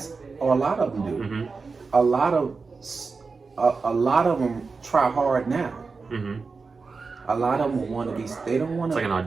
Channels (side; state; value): left; quieter; 4.5 dB